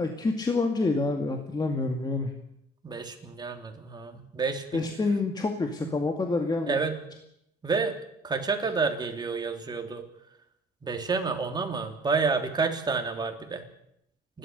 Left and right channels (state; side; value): normal; both; correlation 0.54